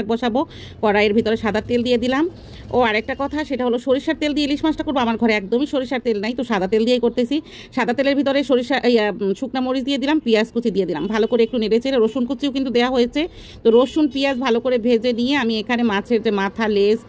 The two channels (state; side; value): identical; both; correlation 1.00